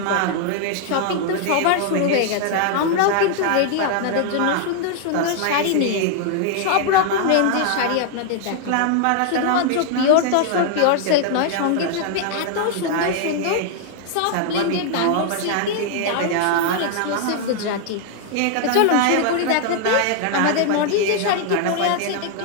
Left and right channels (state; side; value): different; both; correlation 0.00